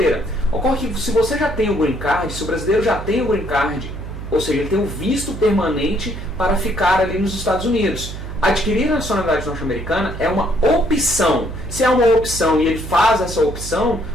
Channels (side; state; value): right; noise; hum, 9 dB below the sound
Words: Ocorre que se você já tem o Green Card, se o brasileiro já tem o Green Card, ou seja, ele tem um visto permanente para ficar ali nos Estados Unidos. Adquirir a nacionalidade norte-americana é uma opção. Se é uma opção e ele faz essa opção,